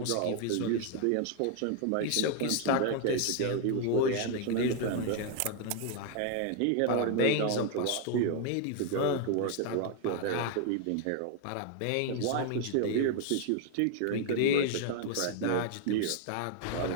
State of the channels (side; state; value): both; different; correlation 0.00